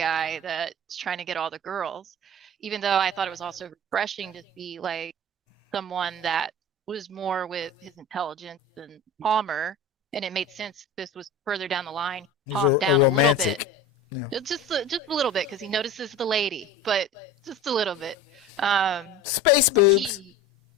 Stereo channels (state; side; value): normal; both; correlation 0.34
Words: that's trying to get all the girls. Even though I thought it was also refreshing to see like someone that was more with his intelligence than Palmer, and it made sense this was further down the line. He's Calmed a down a little romantic. bit. Yeah. Just a little bit because he notices the lady, but just a little bit. Space boobs.